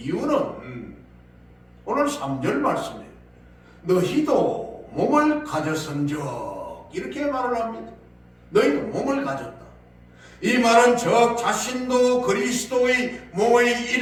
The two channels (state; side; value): identical; both; correlation 1.00